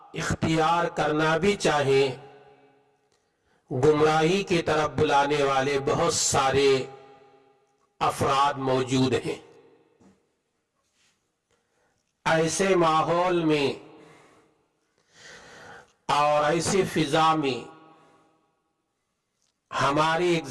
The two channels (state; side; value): identical; both; correlation 1.00